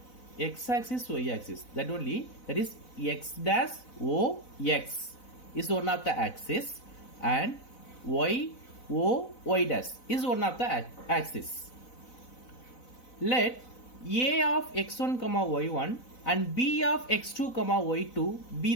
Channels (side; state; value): right; late; 4.0 ms